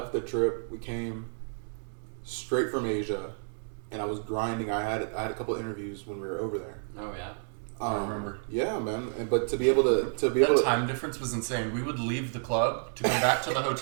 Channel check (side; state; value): left; silent; digital silence